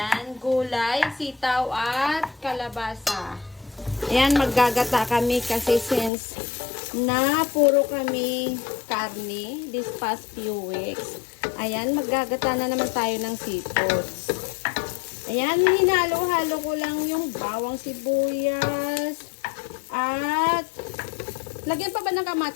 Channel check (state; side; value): drops out; right; at 6.1 s